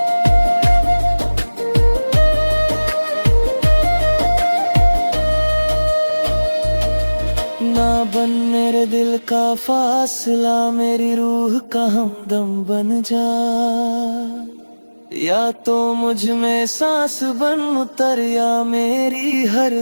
ना बन मेरे दिल का फासला, मेरी रूह का हमदम बन जा, या तो मुझ में सांस बन उतर, या मेरी हर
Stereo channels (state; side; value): inverted; both; correlation -1.00